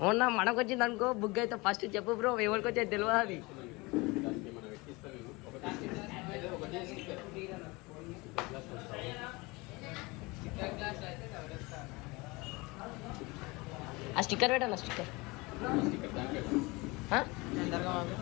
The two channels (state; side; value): quieter; right; 24.4 dB